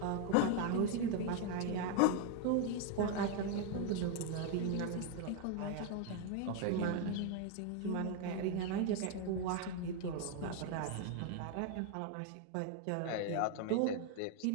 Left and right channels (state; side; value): different; both; correlation 0.01